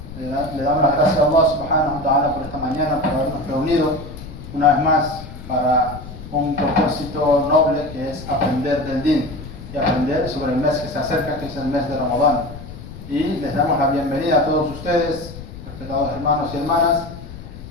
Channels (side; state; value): left; noise; rumble, 13 dB below the sound